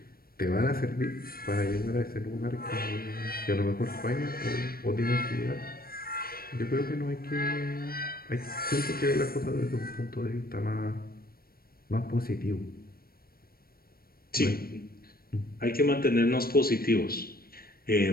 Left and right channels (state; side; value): late; right; 0.44 ms